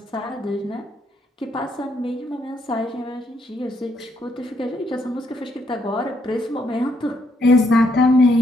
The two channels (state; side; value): normal; both; correlation 0.74